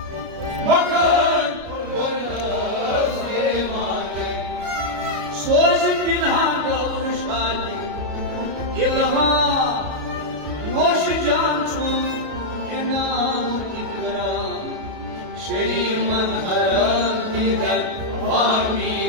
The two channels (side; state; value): left; late; 33 ms